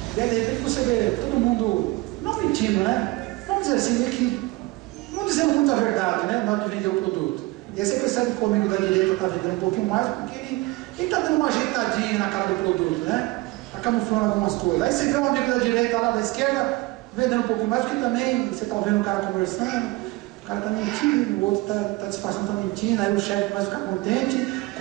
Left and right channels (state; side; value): quieter; left; 21.5 dB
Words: E aí de repente você vê todo mundo, não mentindo, né? Vamos dizer assim, meio que não dizendo muita verdade, né? Na hora de vender o produto. E aí você percebe que o amigo da direita está vendendo um pouquinho mais, porque ele está dando uma ajeitadinha na cara do produto, né? Está camuflando algumas coisas. Aí você vê um amigo da direita lá da esquerda vendendo um pouquinho mais, porque também você está vendo o cara conversando, o cara está mentindo, o outro está disfarçando, está mentindo, aí o chefe começa a ficar contente